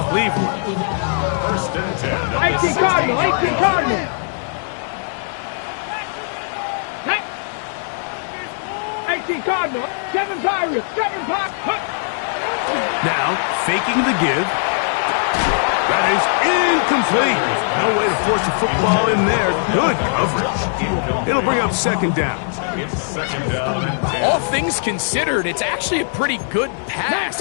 Cleveland. 18 Cardinal, 18 Cardinal. Hey. 18 Cardinal, 7 Pirates, 7 Pirates. Now, faking the give. That is incomplete. No way to force a football in there. Good coverage. It'll bring up second down. All things considered, it's actually a pretty good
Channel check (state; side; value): silent; right; 63 dB below the other